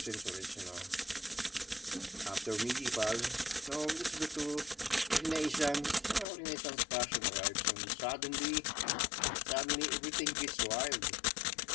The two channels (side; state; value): right; drops out; at 6.2 s